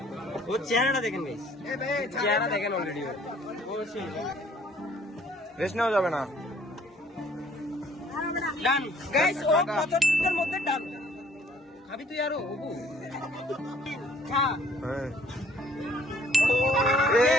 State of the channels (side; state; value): both; normal; correlation 0.59